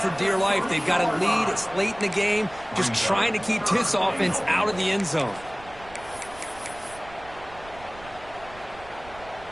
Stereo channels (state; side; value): noise; right; rumble, 20 dB below the sound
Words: dear life. They've got a lead. It's late in the game. Just trying to keep this offense out of the end zone.